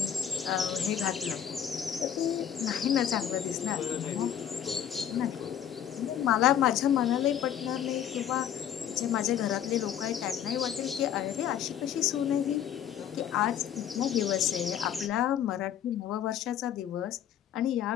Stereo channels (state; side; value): quieter; right; 9.6 dB